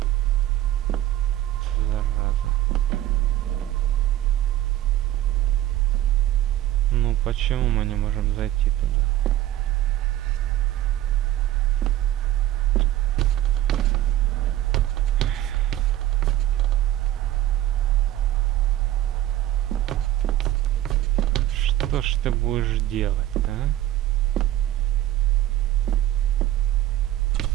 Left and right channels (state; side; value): quieter; left; 13.6 dB